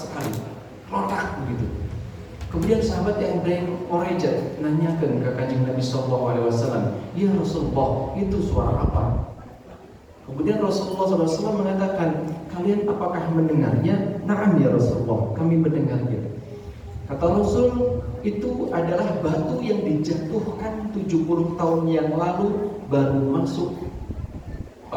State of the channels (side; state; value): both; identical; correlation 1.00